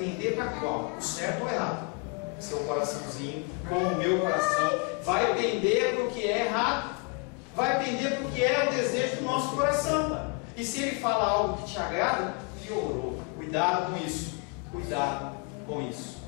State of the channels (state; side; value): quieter; right; 32.0 dB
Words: para qual? O certo ou errado? Seu coraçãozinho, como o meu coração, vai pender para o que é errado. vai pender porque é o desejo do nosso coração. E se ele fala algo que te agrada, piorou. Cuidado com isso. Cuidado com isso.